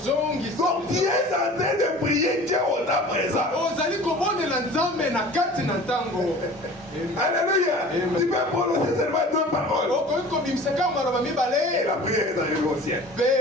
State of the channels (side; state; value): both; normal; correlation 0.43